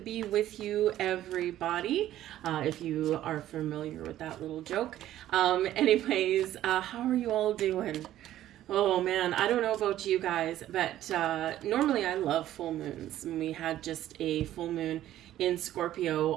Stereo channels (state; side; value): quieter; left; 13.0 dB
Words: be with you, everybody, if you are familiar with that little joke. Anyways, how are you all doing? Oh man, I don't know about you guys, but normally I love full moons. And we had just a full moon in